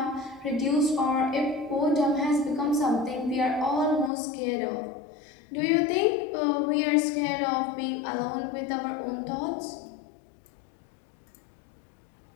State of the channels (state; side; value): drops out; right; at 4.1 s